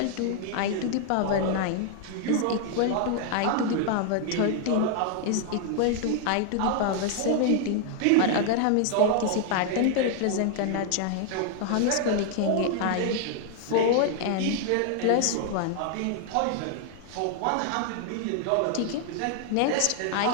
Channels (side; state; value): both; different; correlation 0.00